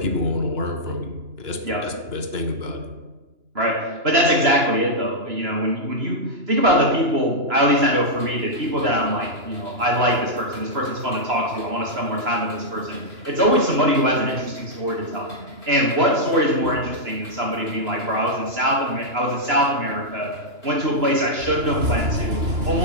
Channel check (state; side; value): late; left; 2.9 ms